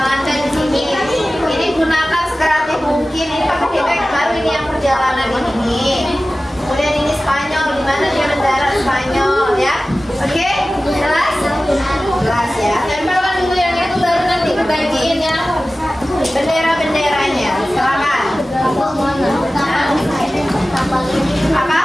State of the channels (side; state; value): both; normal; correlation 0.96